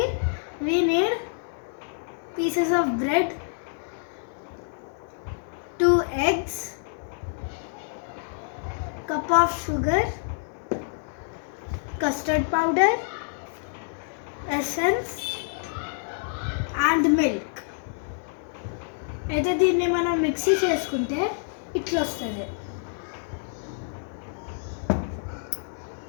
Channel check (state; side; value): silent; right; digital silence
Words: we need pieces of bread, 2 eggs, cup of sugar, custard powder, essence and milk. అయితే దీన్ని మనం మిక్సీ చేసుకుంటే ఇట్లా వస్తుంది.